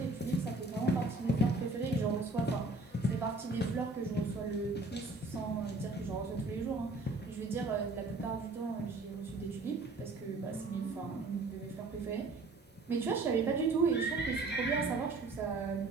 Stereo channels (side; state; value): left; quieter; 3.2 dB